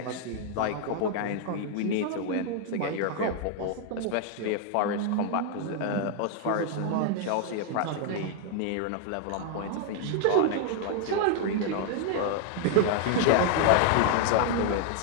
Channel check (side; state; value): both; different; correlation 0.00